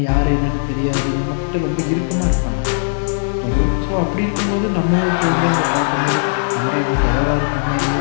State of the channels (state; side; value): silent; right; digital silence